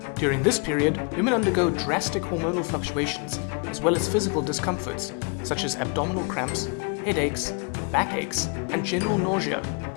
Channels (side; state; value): right; quieter; 34.1 dB